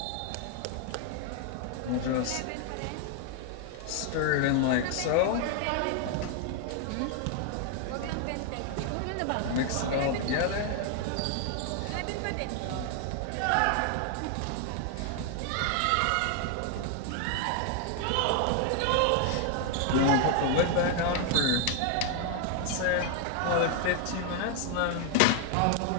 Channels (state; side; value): different; both; correlation 0.00